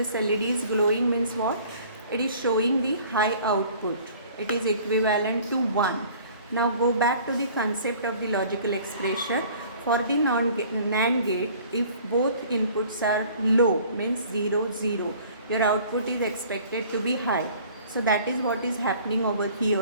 LED is glowing means what? It is showing the high output. It is equivalent to 1. Now go back to the concept of the logical expression. For the NAND gate, if both inputs are low means 0, 0, your output is expected to be high. So that is what is happening over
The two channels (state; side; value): inverted; both; correlation -0.51